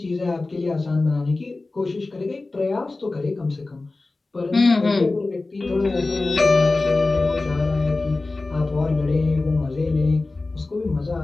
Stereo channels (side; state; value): right; quieter; 3.3 dB